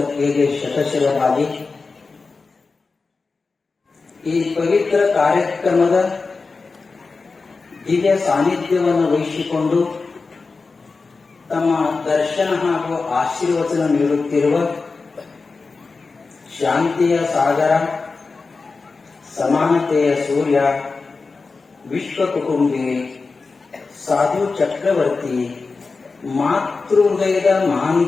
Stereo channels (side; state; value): right; quieter; 4.2 dB